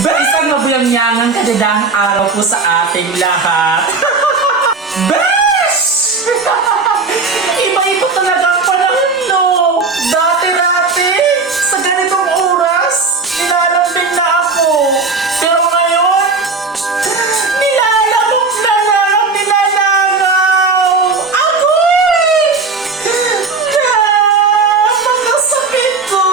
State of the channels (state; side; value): quieter; left; 4.2 dB